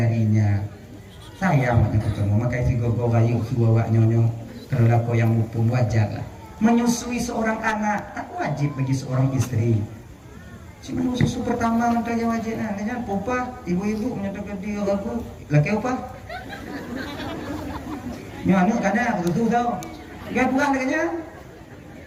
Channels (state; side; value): identical; both; correlation 1.00